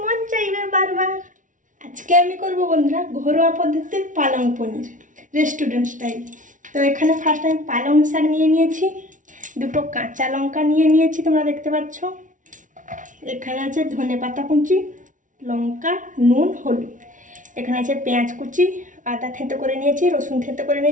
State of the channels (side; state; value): left; late; 0.37 ms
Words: মন চাইবে বারবার। আজকে আমি করবো বন্ধুরা ঘরোয়া পদ্ধতির পালং পনির, রেস্টুরেন্ট স্টাইল। তো এখানে ফার্স্ট আমি পালং শাক নিয়ে নিয়েছি, দুটো কাঁচা লঙ্কা নিয়ে নিয়েছি, তোমরা দেখতে পাচ্ছ। এখানে আছে ধনেপাতা কুচি, লঙ্কা, নুন, হলুদ। এখানে আছে পেঁয়াজ কুচি, আদা থেঁতো করে নিয়েছি, রসুন থেঁতো করে